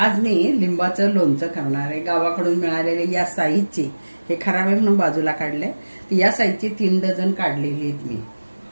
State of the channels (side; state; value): both; inverted; correlation -1.00